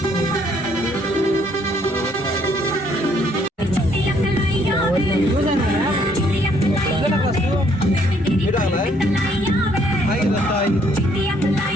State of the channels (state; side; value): normal; both; correlation 0.66